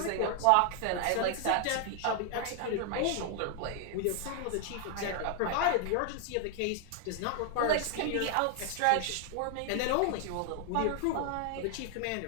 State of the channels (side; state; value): both; different; correlation 0.00